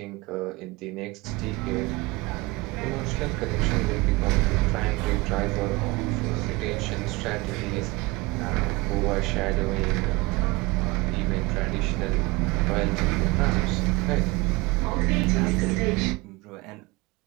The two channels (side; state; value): left; quieter; 23.4 dB